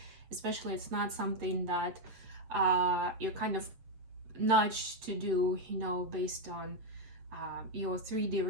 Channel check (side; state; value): left; late; 8.0 ms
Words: especially it's not something that you're kind of nudged to do, based on your 3D